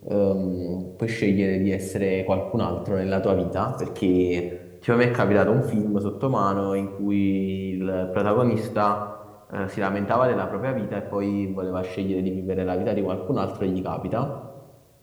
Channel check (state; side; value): identical; both; correlation 1.00